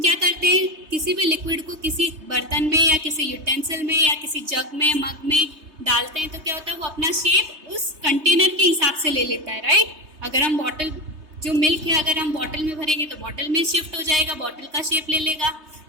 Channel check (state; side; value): late; left; 3.2 ms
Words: करते हैं, किसी भी लिक्विड को किसी बर्तन में या किसी यूटेंसिल में या किसी जग में, मग में डालते हैं तो क्या होता है, वो अपना शेप उस कंटेनर के हिसाब से ले लेता है, राइट. अगर हम बॉटल, जो मिल्क है अगर हम बॉटल में भरेंगे तो बॉटल में शिफ्ट हो जाएगा, बॉटल का शेप ले लेगा.